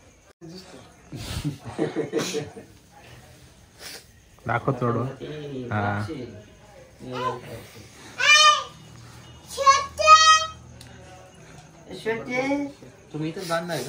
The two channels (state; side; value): identical; both; correlation 1.00